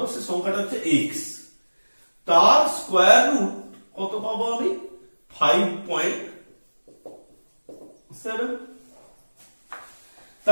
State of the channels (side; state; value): both; inverted; correlation -1.00